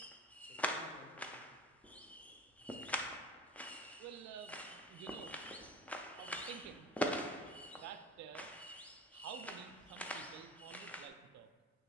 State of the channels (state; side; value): normal; both; correlation 0.36